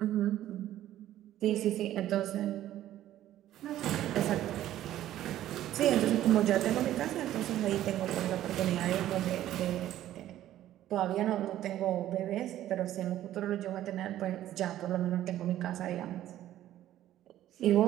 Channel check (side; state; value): left; quieter; 13.0 dB